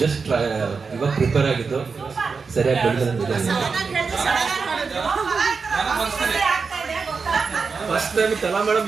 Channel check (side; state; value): left; quieter; 5.0 dB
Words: ಜಸ್ಟ್ ಇವಾಗ ಪ್ರಿಪೇರ್ ಆಗಿದ್ದು ಸರಿಯಾಗಿ ಬೆಳೆದಿದೆ. ಫಸ್ಟ್ ಟೈಮ್ ಕಲಾ ಮೇಡಮ್